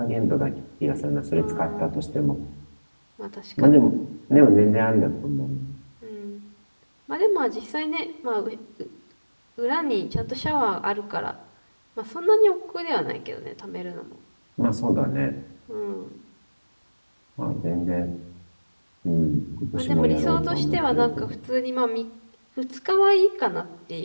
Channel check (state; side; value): inverted; both; correlation -1.00